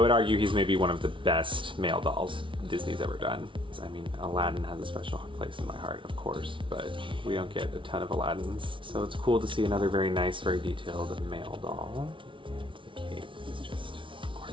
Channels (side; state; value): left; late; 0.25 ms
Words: argue he's maybe one of the best male dolls Disney's ever done. I mean, Aladdin has a special place in my heart, of course, but we don't get a ton of Aladdins. So it's cool to see another very nice, very detailed male doll. The cape is just